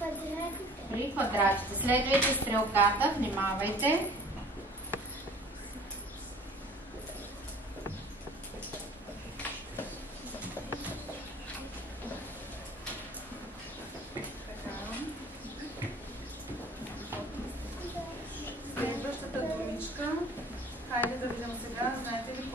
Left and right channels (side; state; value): both; normal; correlation 0.49